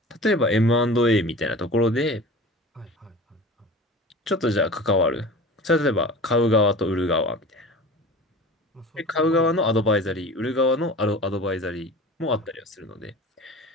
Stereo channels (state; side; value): normal; both; correlation 0.37